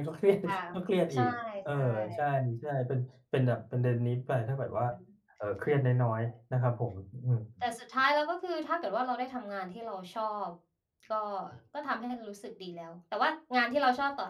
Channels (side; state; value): both; identical; correlation 1.00